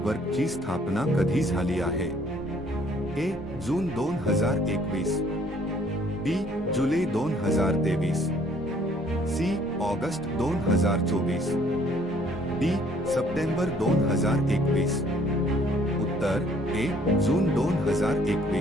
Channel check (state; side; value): noise; left; rumble, 25 dB below the sound